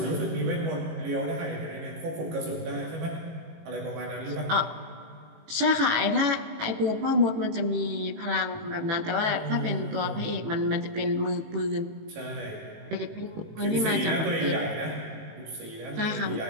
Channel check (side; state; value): left; late; 18 ms